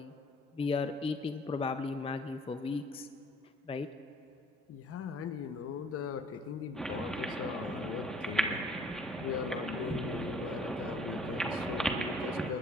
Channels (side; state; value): both; normal; correlation 0.57